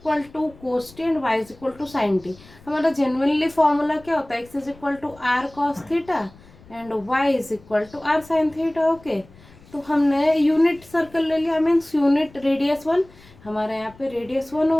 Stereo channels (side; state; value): left; noise; rumble, 24 dB below the sound